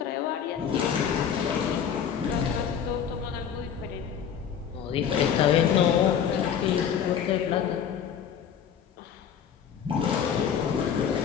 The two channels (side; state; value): right; quieter; 8.2 dB